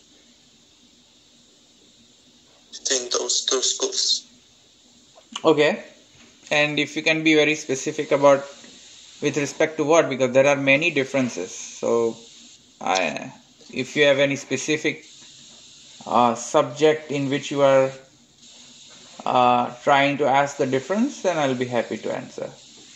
between those two schools. Okay. And if you can be very specific about with respect to what, because there are many differences. So, if you have any specific subject in which you are trying to ask the difference, then I'll be happy to answer.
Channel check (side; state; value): both; identical; correlation 1.00